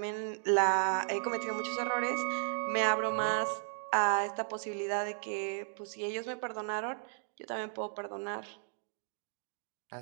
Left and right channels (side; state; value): left; silent; digital silence